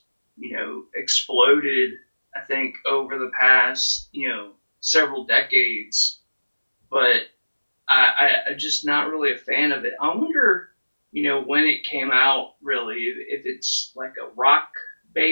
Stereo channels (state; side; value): inverted; both; correlation -1.00